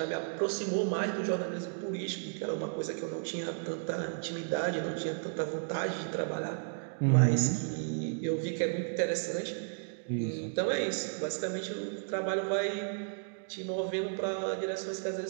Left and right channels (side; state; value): left; silent; digital silence